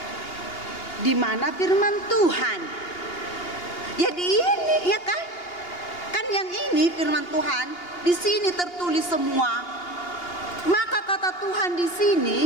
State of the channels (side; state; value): right; late; 2.8 ms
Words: Di mana firman Tuhan? Ya di ini, ya kan? Kan yang ini firman Tuhan, di sini tertulis semua. Maka kata Tuhan di